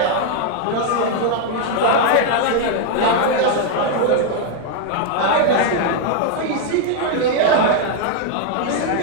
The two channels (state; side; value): different; both; correlation 0.01